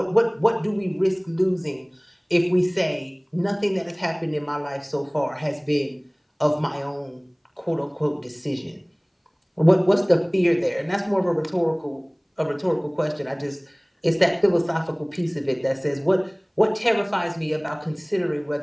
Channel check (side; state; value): both; identical; correlation 1.00